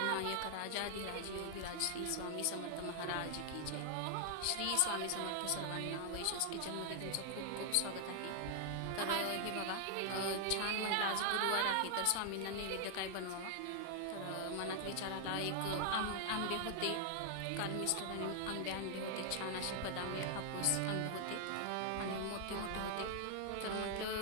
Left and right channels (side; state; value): both; different; correlation 0.00